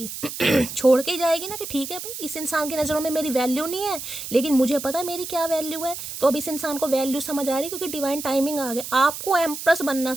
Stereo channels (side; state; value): right; noise; hiss, 8 dB below the sound